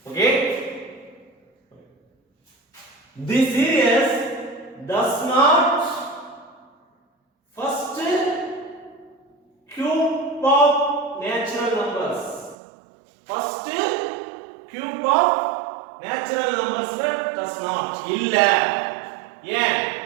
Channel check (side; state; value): left; drops out; at 12.6 s